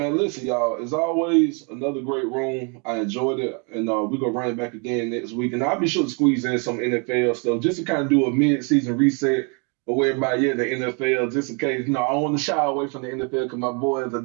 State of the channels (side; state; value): left; quieter; 35.8 dB